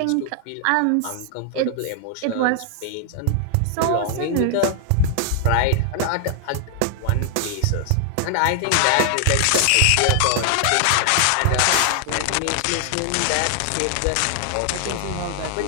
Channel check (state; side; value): different; both; correlation 0.00